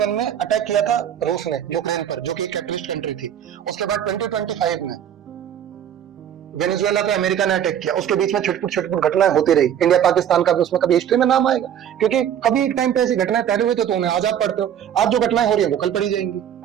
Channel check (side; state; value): left; quieter; 9.8 dB